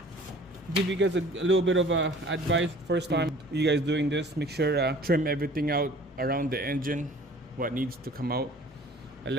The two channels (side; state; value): both; normal; correlation 0.49